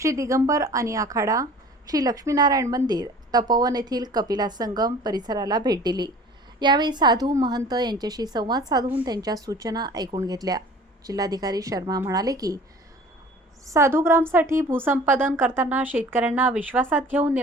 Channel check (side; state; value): both; normal; correlation 0.46